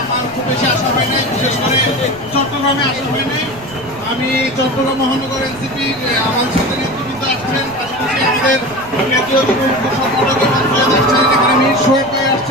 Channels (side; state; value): right; noise; rumble, 21 dB below the sound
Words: আমার খুব বেশি আশা হয় নাই, বিশেষ করে চট্টগ্রামে আসা হয় নাই। আমি চট্টগ্রাম মহানগর এনসিপির আমাদের সাথে নেতৃবৃন্দ আসছেন, পাশাপাশি আমাদের কেন্দ্রীয় যুব সংগঠকের মন্ত্রী আসছেন, এখানে মীর সোহেব ভাই